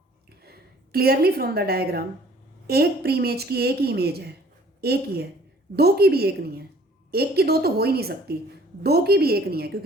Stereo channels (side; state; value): both; normal; correlation 0.55